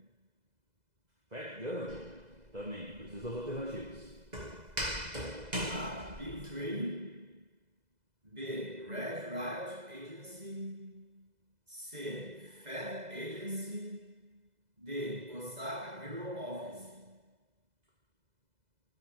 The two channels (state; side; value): late; left; 2.0 ms